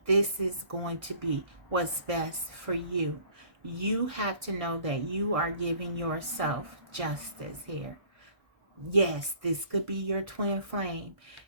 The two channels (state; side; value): late; left; 1.6 ms